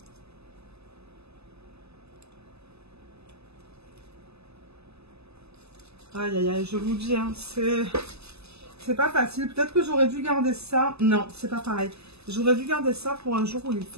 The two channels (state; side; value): late; left; 0.79 ms